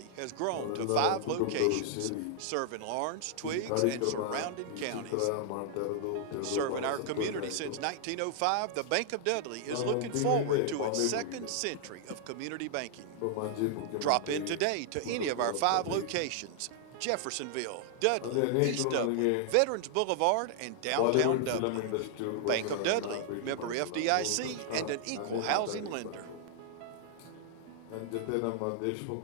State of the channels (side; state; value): both; different; correlation 0.00